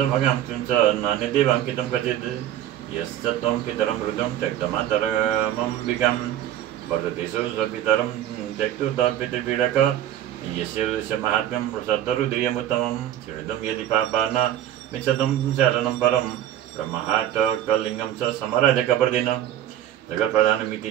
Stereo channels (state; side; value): quieter; left; 11.9 dB